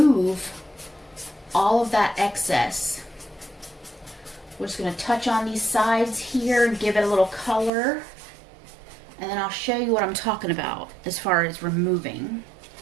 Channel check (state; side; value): drops out; left; at 7.7 s